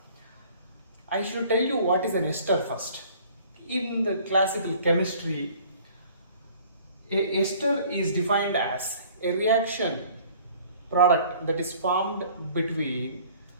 I should tell you what is an ester first. In the classical chemistry, a ester is defined as a reaction product that is formed between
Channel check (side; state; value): both; inverted; correlation -0.53